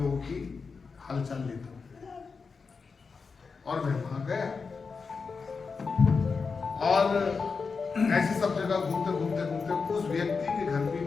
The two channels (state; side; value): quieter; right; 4.9 dB